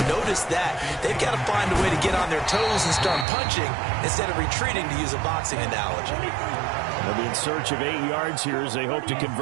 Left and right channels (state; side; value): drops out; left; at 3.2 s